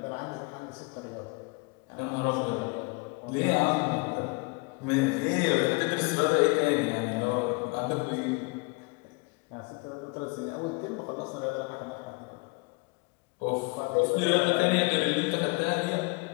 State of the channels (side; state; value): right; quieter; 28.7 dB